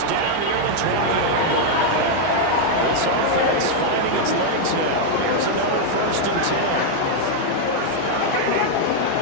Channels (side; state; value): both; different; correlation 0.00